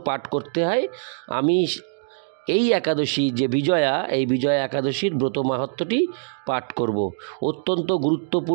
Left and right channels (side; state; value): left; silent; digital silence